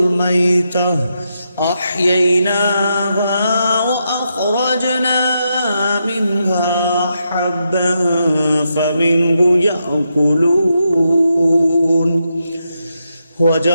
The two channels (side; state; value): both; inverted; correlation -0.83